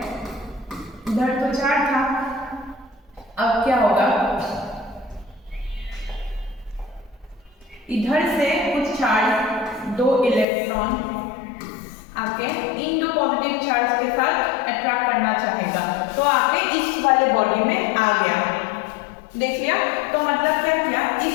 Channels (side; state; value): right; drops out; at 10.5 s